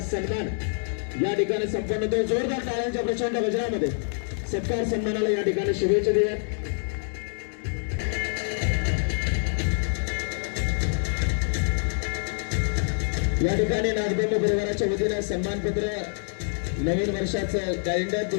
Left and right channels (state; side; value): silent; right; 61 dB below the other